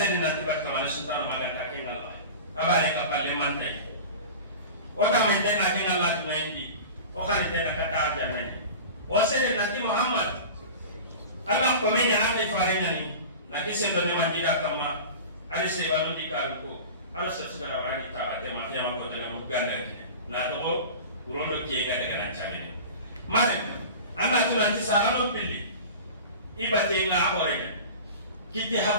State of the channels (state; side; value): inverted; both; correlation -0.34